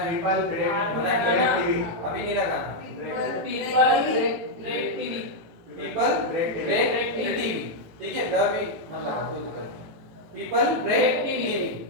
People break TV. अभी नहीं लगाना। People break TV. ठीक है, द भी मत लगा, कोई दिक्कत नहीं। पीपल ब्रेक टीवी,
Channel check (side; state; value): left; late; 18 ms